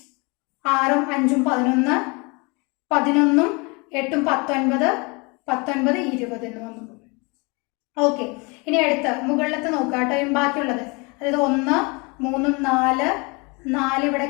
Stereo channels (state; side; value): quieter; right; 29.1 dB